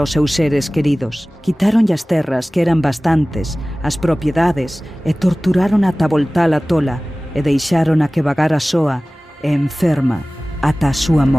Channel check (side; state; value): both; normal; correlation 0.98